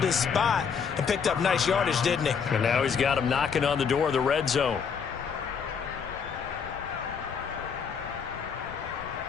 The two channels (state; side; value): quieter; right; 6.5 dB